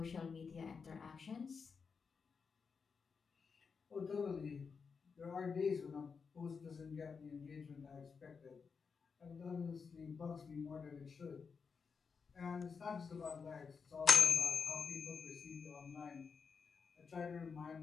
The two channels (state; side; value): quieter; right; 5.6 dB